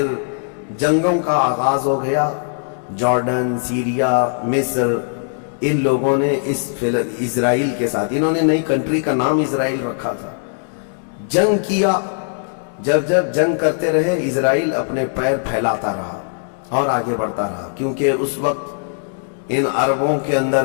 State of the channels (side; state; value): right; silent; digital silence